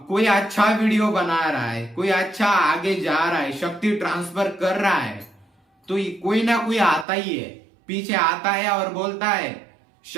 कोई अच्छा वीडियो बना रहा है, कोई अच्छा आगे जा रहा है, शक्ति ट्रांसफर कर रहा है, तो कोई ना कोई आता ही है, पीछे आता है और बोलता है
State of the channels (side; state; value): left; drops out; at 7.1 s